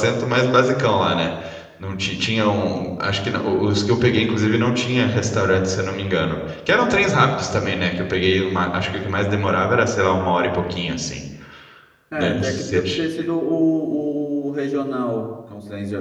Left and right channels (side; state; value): both; identical; correlation 1.00